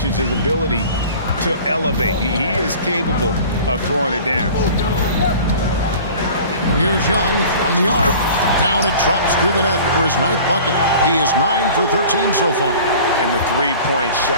ability to elevate. He is capable of throwing it down. And here's Young from the arc. Down it drops through the net for his 9th bucket. He is 9 for 13 so far. And the three-point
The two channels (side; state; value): both; inverted; correlation -0.43